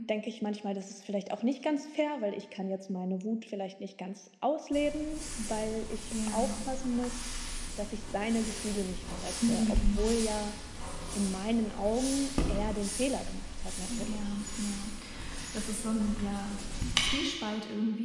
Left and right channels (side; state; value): both; identical; correlation 1.00